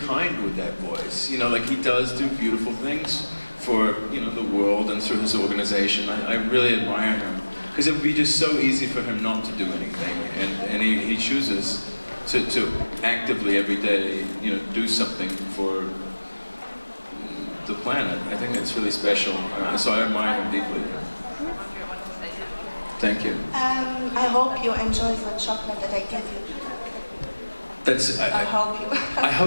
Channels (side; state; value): both; inverted; correlation -1.00